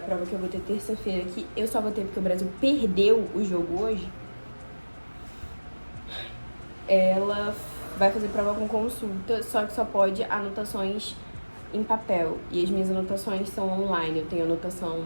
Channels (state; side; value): inverted; both; correlation -1.00